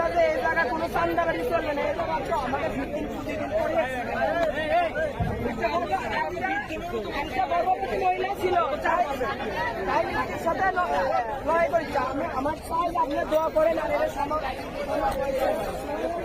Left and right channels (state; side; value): identical; both; correlation 1.00